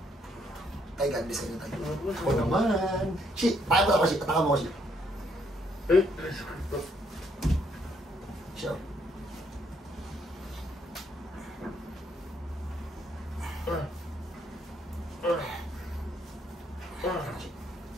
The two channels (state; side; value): normal; both; correlation 0.71